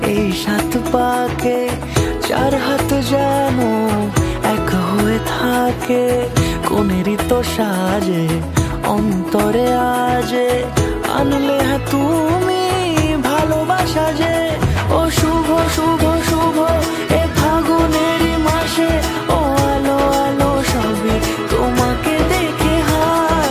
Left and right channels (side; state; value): both; identical; correlation 1.00